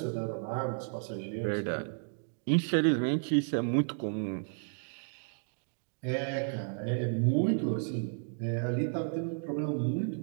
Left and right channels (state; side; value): silent; left; digital silence